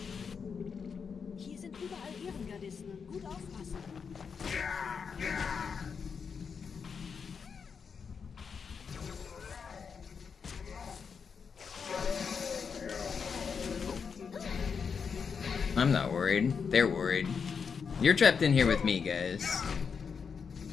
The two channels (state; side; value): quieter; right; 6.1 dB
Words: Hier sind überall Ehrengardisten. Gut aufpassen. I'm not worried. They're worried. You're trapped in here with me, guys.